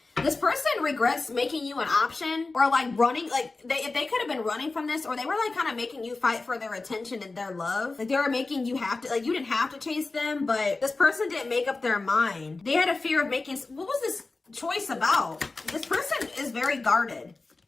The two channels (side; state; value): right; quieter; 3.6 dB